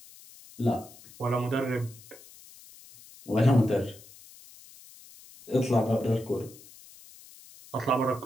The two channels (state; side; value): noise; left; hiss, 21 dB below the sound